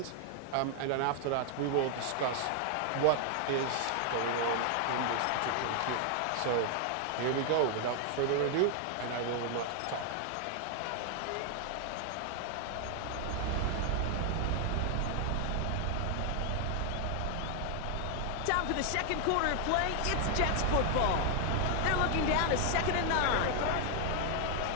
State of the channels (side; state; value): both; different; correlation 0.00